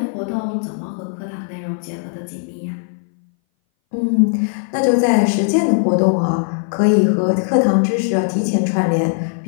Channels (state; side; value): silent; right; 61 dB below the other